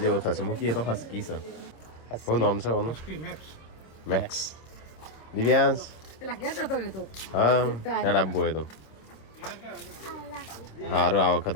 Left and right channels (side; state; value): right; late; 26 ms